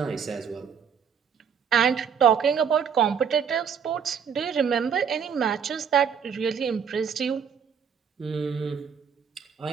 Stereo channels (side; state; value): left; quieter; 7.1 dB